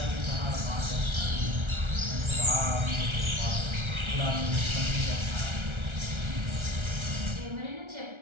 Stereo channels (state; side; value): late; left; 1.3 ms